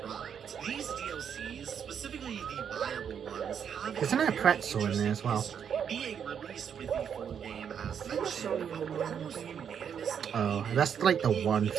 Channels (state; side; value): quieter; left; 7.9 dB